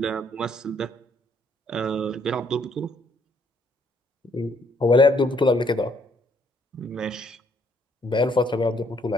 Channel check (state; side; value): normal; both; correlation 0.67